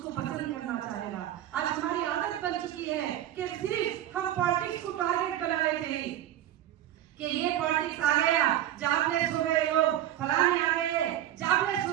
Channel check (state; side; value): quieter; left; 12.3 dB